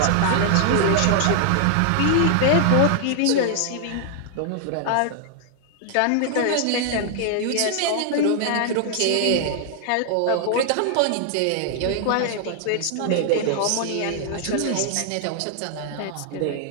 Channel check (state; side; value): different; both; correlation 0.00